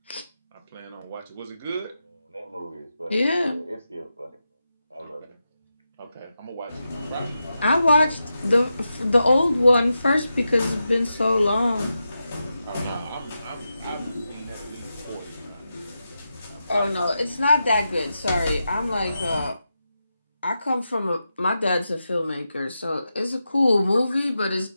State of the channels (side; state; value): both; inverted; correlation -0.89